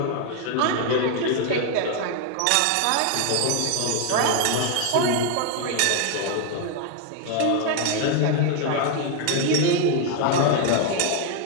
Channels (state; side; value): different; both; correlation 0.00